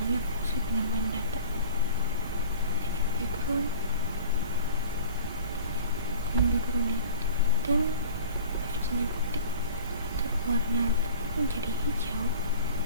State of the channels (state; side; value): inverted; both; correlation -0.44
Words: fungsi penambahan data. Ini background ini dan font-nya putih, warna menjadi hijau